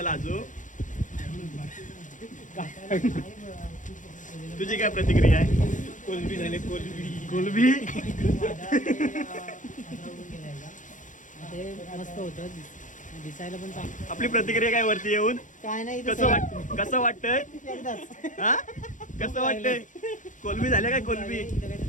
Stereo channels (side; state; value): right; late; 0.37 ms